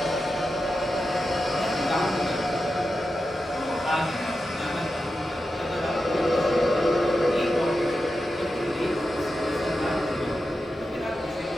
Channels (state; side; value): normal; both; correlation 0.90